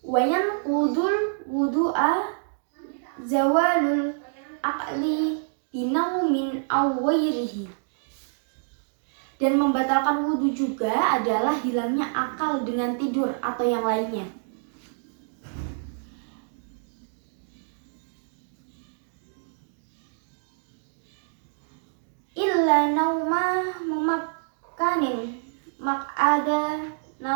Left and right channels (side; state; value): left; silent; digital silence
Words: Wayan kudul wudu'a zawalul aqli binaumin awwairihi, dan membatalkan wudhu juga adalah hilangnya akal dengan tidur atau yang lainnya. Illa nauma mumakkanin mak'ada